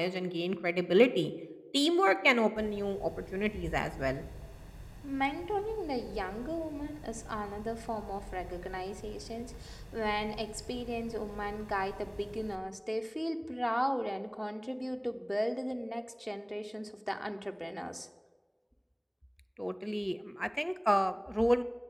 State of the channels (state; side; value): identical; both; correlation 1.00